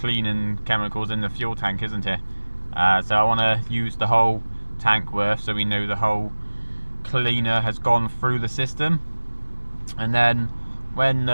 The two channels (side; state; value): both; inverted; correlation -1.00